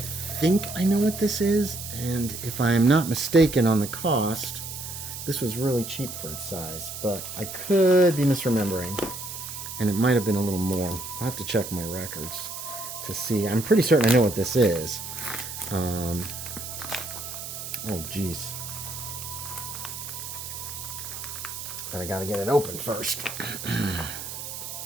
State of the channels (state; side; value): noise; right; hiss, 8 dB below the sound